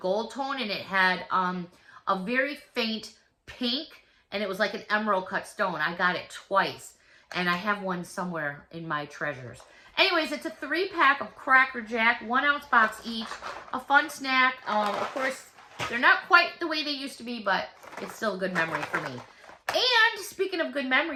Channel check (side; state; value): both; identical; correlation 1.00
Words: tone, and it had a very faint pink, and it was like an emerald cut stone. I got it twice, and I have one somewhere in my treasures. Anyways, it's a 3-pack of Cracker Jack, 1-ounce box each, a fun snack. Of course, they're not quite the way they used to be, but it's still a good memory for me. And speaking of good